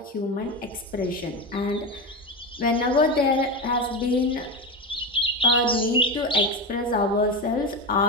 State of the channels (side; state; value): both; normal; correlation 0.18